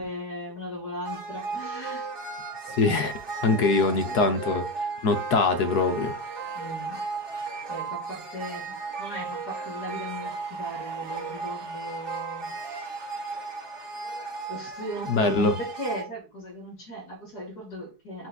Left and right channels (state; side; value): late; right; 4.8 ms